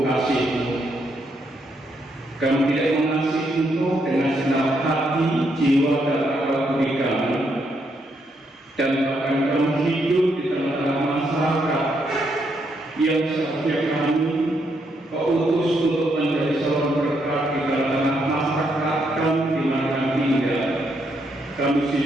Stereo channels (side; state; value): both; normal; correlation 0.77